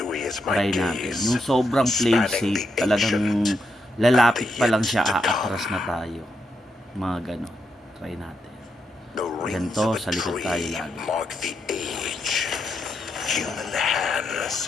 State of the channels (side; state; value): both; normal; correlation 0.82